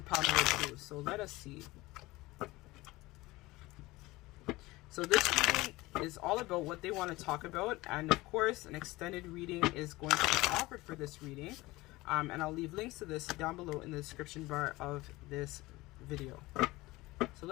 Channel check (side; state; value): right; quieter; 20.2 dB